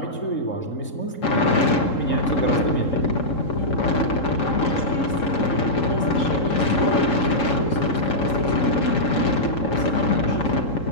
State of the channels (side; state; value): right; late; 3.7 ms